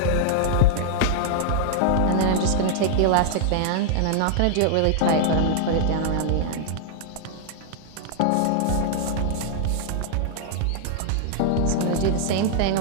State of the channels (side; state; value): both; different; correlation -0.01